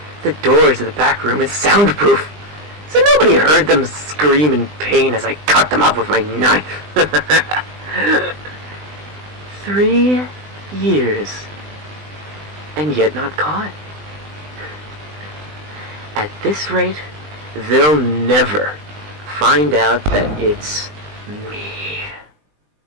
The doors of the back room is soundproof, so nobody heard them scream in pain as I cut them up with my knife. 3 years, and yet not caught. At this rate, they'll never find out that it's me.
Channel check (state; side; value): late; left; 20 ms